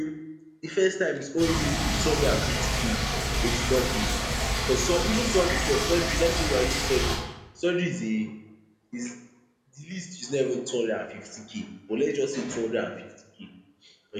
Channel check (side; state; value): both; identical; correlation 1.00